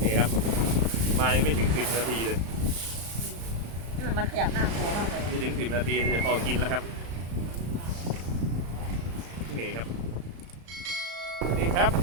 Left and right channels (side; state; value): left; late; 35 ms